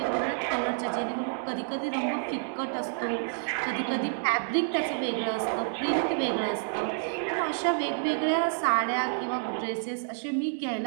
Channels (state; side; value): silent; left; 59 dB below the other